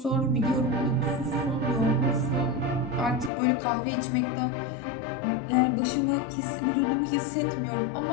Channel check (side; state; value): right; drops out; at 3.3 s